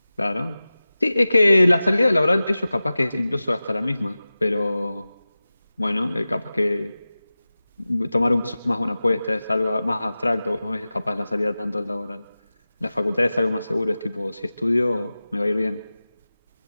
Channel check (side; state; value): both; inverted; correlation -0.96